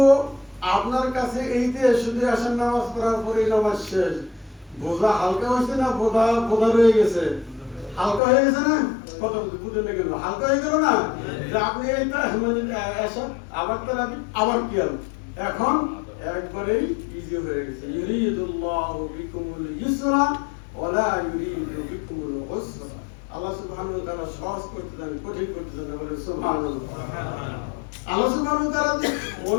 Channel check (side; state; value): right; drops out; at 8.2 s